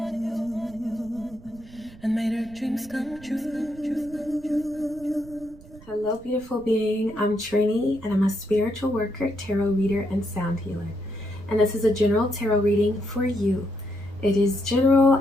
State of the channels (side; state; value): right; noise; rumble, 20 dB below the sound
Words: and made her dreams come true. Hello, beautiful being. I'm Trini, and I'm a spiritual worker, tarot reader, and sound healer. And this is a general tarot reading for you. It is general,